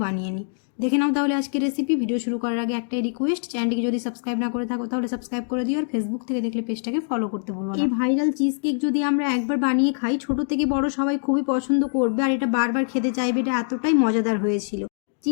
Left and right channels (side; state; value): right; silent; digital silence